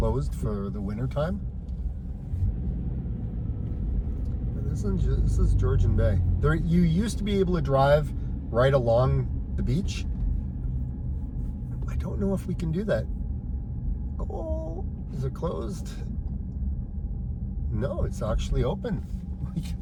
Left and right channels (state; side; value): identical; both; correlation 1.00